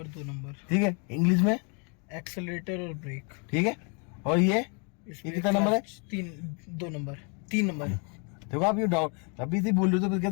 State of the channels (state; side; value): quieter; right; 36.2 dB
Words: 2 नंबर, ठीक है, इंग्लिश में एक्सेलरेटर और ब्रेक, ठीक है। और ये कितना नंबर है? 2 नंबर 3 नंबर। देखो आप ये डाउट अभी से बोल रहे हो तो फिर